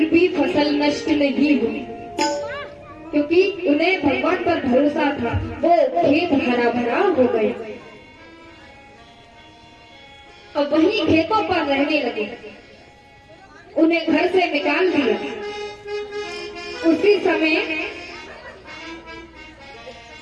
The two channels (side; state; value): both; identical; correlation 1.00